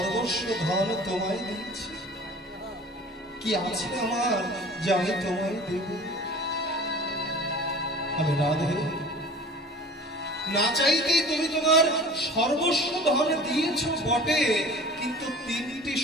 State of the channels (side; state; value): both; normal; correlation 0.42